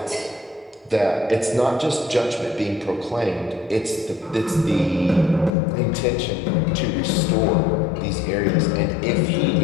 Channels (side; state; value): right; drops out; at 5.5 s